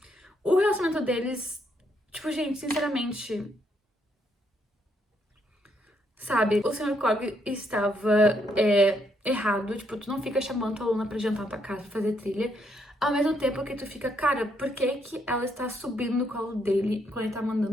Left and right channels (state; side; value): normal; both; correlation 0.74